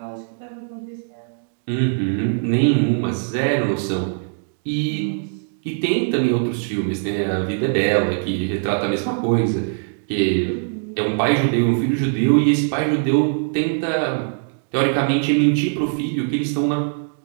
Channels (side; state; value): left; silent; digital silence